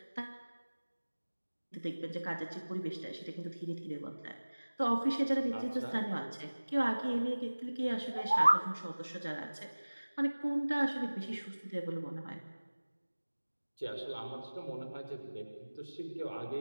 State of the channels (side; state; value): both; inverted; correlation -1.00